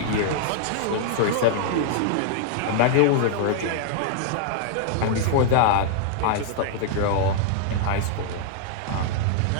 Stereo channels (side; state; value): both; different; correlation -0.01